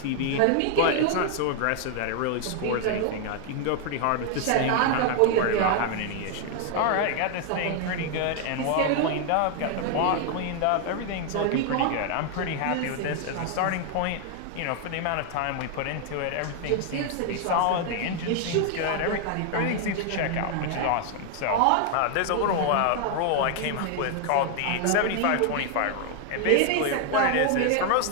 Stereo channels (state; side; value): different; both; correlation 0.00